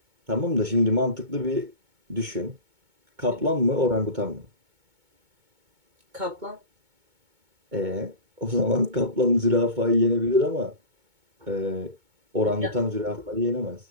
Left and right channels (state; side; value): late; left; 2.2 ms